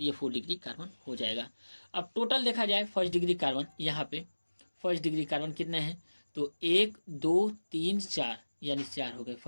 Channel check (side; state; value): both; inverted; correlation -1.00